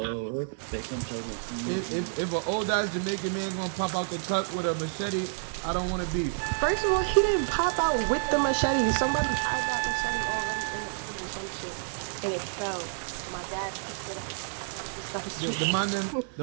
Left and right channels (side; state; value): left; silent; 58 dB below the other